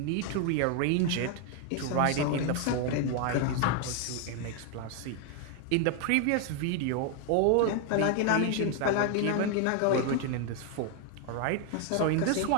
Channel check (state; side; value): different; both; correlation 0.01